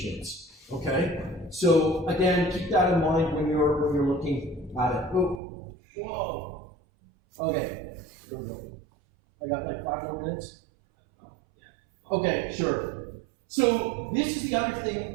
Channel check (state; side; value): drops out; left; at 5.4 s